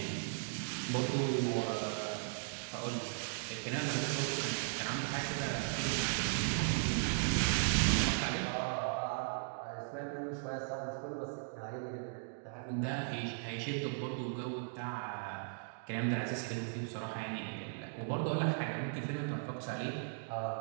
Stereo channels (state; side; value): silent; left; digital silence